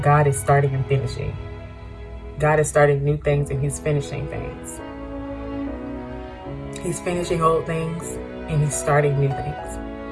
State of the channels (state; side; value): identical; both; correlation 1.00